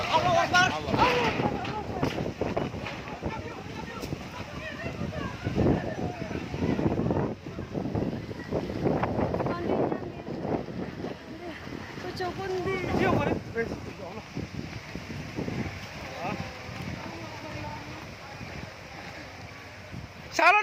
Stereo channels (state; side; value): identical; both; correlation 1.00